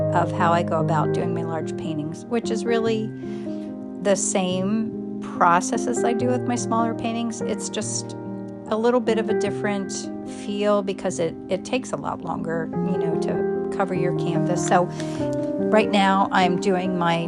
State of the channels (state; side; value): identical; both; correlation 1.00